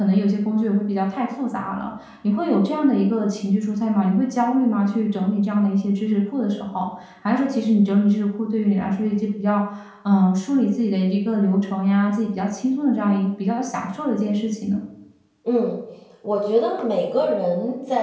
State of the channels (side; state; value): both; identical; correlation 1.00